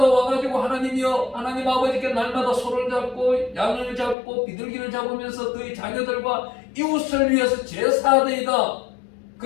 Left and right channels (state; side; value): drops out; right; at 4.2 s